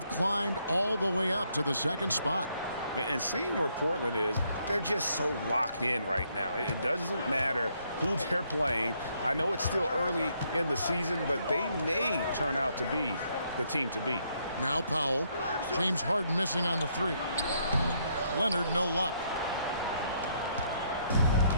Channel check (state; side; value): inverted; both; correlation -0.72